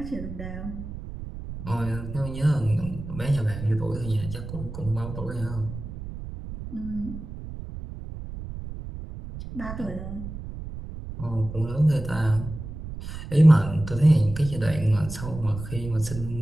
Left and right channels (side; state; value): right; noise; rumble, 10 dB below the sound